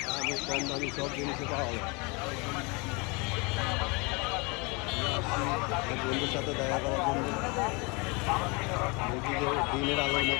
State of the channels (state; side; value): quieter; right; 29.0 dB